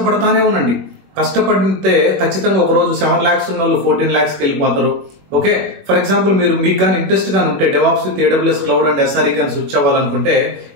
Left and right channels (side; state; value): left; late; 21 ms